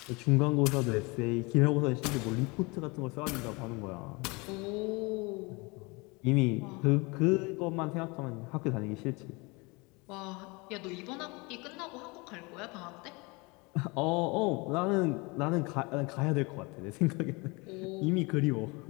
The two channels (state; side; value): quieter; right; 27.0 dB